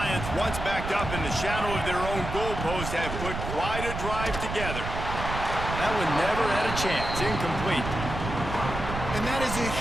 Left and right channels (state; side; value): noise; right; rumble, 6 dB below the sound